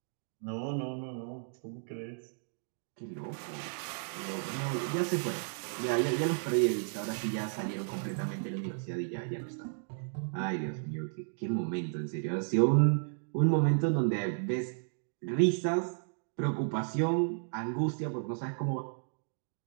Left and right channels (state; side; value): silent; left; digital silence